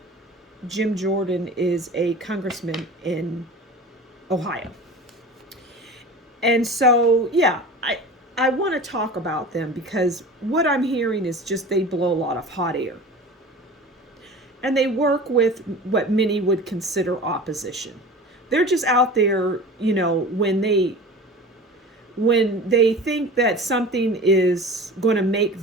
Jim Jordan is a congressman in Ohio. And so, I want to talk about them because what I'm hearing is just they blow a lot of hot air. And they work with what many would consider opposition. They're just out there, when they think that something is going to make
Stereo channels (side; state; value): both; normal; correlation 0.36